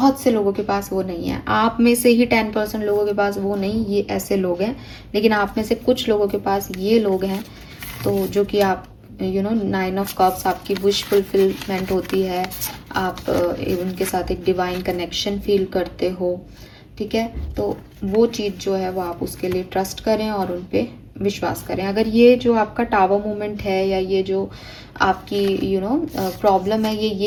से लोगों के पास वो नहीं है। आप में से ही 10% लोगों के पास वो नहीं, ये ऐसे लोग हैं, लेकिन आप में से कुछ लोगों के पास ये लोग हैं, तो जो कि आप 9 ऑफ कप्स आपकी विश फुलफिलमेंट होती है, आप उनके साथ एक डिवाइन कनेक्शन फील करते हो, ठीक है। तो वो चीज़ जो है वो आप उसके लिए ट्रस्ट करें और उन पे विश्वास करें। अगर ये जो आपका टावर मूवमेंट है, या ये जो आपकी प्रॉब्लम है, ये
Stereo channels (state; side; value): identical; both; correlation 1.00